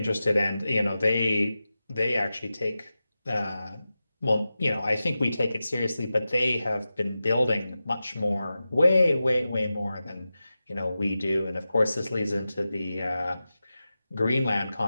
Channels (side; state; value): both; inverted; correlation -0.94